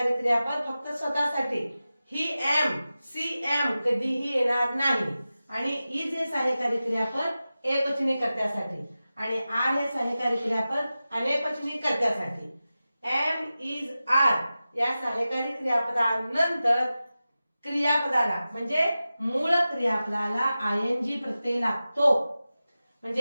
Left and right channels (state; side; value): inverted; both; correlation -0.94